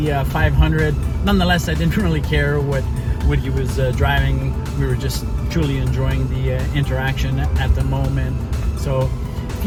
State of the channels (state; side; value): identical; both; correlation 1.00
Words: 500. Nonetheless, I didn't really care what he was driving. We were just truly enjoying the interaction at the moment. So if